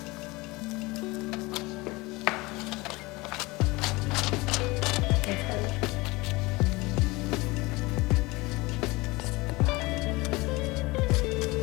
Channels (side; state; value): right; quieter; 22.8 dB